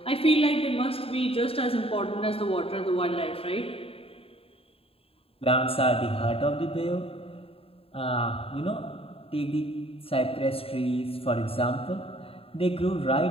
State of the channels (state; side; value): late; right; 0.27 ms